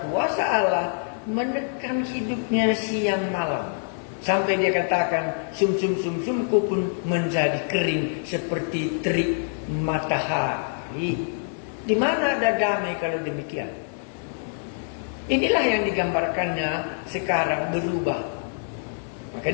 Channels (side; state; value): right; silent; digital silence